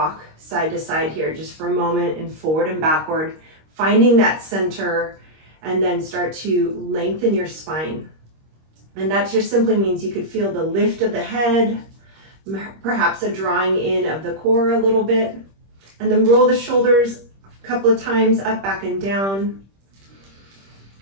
side to side here just for a moment, and forward and backward, finding that center, and then start to lengthen your spine. And that just simply means you could feel the lift of the head, perhaps a drawing in of the core a little bit, and then roll the shoulders a couple of times up, back, and down.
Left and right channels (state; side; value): late; left; 26 ms